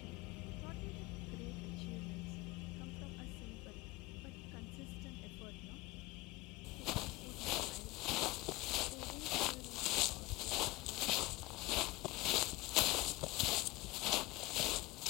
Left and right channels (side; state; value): right; quieter; 20.7 dB